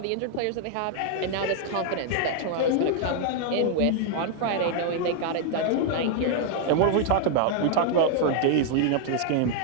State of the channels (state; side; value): different; both; correlation 0.00